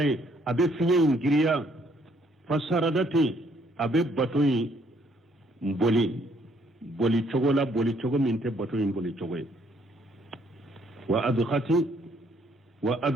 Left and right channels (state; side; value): normal; both; correlation 0.67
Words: abe finye ngiriya fasaradati abe bato mboli boli chogo minte bato boli chogo wa